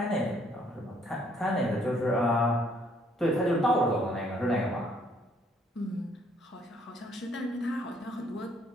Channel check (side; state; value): both; normal; correlation 0.66